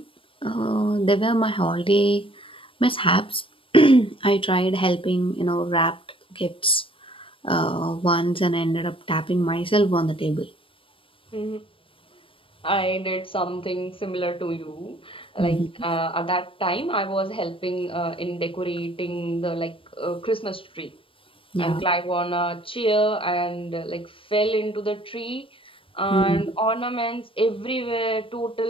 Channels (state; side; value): late; right; 0.26 ms